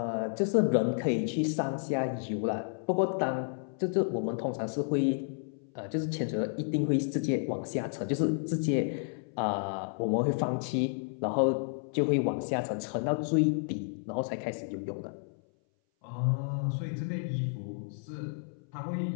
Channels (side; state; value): right; silent; 57 dB below the other